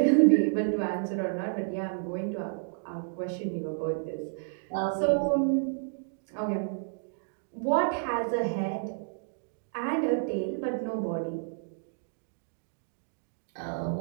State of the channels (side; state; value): left; silent; digital silence